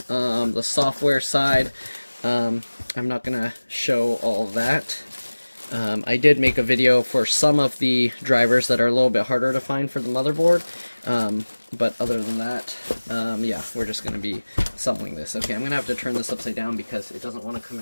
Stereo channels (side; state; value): both; inverted; correlation -1.00